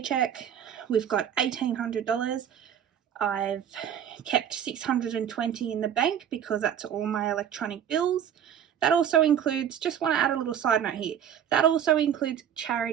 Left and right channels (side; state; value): left; quieter; 9.2 dB